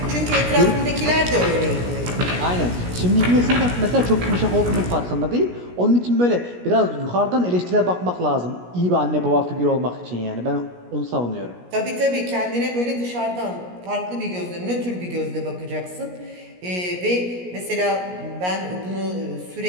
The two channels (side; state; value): left; late; 17 ms